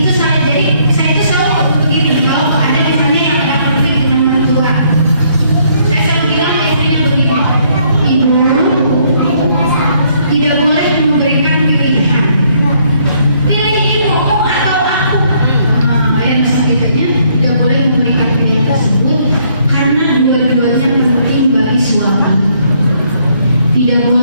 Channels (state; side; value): inverted; both; correlation -0.68